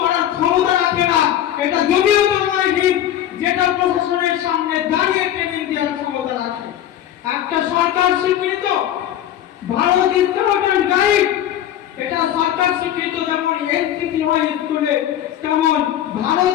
করার ক্ষমতা রাখে না। এটা জমিয়তে উলামায়ে হিন্দ, যেটা প্রশাসনের সামনে দাঁড়িয়ে ট্রেনিং দেওয়ার ক্ষমতা রাখে। একটা সরকার স্বীকৃত ভারত স্কাউট অ্যান্ড গাইড, এটা সরকার স্বীকৃত। যেমন এনসিসি হয় স্কুলে, তেমন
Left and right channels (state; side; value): quieter; right; 11.4 dB